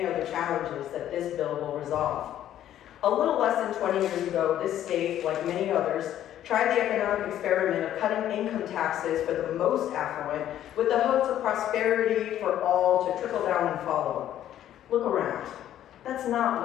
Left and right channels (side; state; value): right; quieter; 11.6 dB